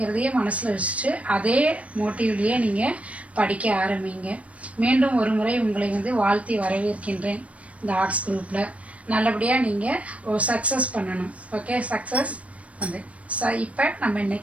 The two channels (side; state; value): left; late; 0.065 ms